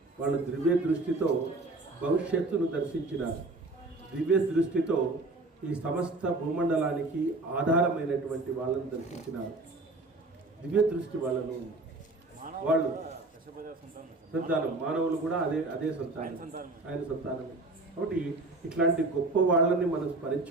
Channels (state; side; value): quieter; left; 3.1 dB